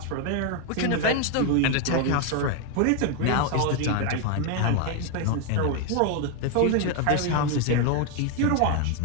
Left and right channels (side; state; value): both; different; correlation 0.01